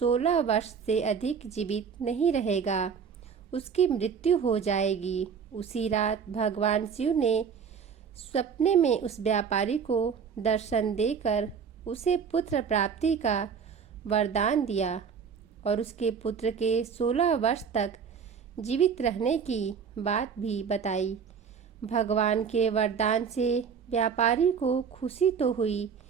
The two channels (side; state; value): left; quieter; 6.6 dB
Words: वर्ष से अधिक जीवित नहीं रहेगा। उसकी मृत्यु हो जाएगी। उसी रात भगवान शिव ने सपने में उस व्यापारी को दर्शन देकर उसे पुत्र प्राप्ति का वरदान दिया और उसके पुत्र के 16 वर्ष तक जीवित रहने की बात भी बताई। भगवान के वरदान से व्यापारी को खुशी तो हुई,